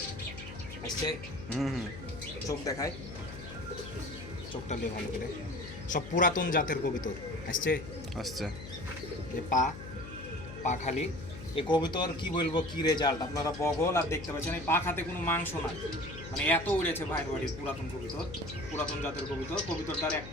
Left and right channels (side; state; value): left; noise; hum, 12 dB below the sound